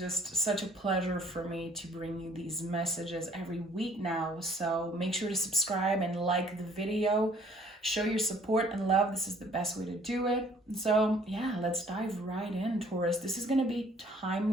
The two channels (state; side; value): normal; both; correlation 0.58